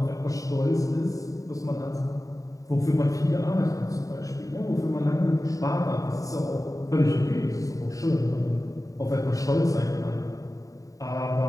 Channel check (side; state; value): right; late; 0.16 ms